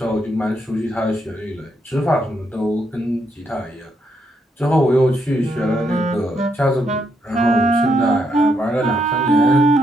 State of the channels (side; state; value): both; normal; correlation 0.77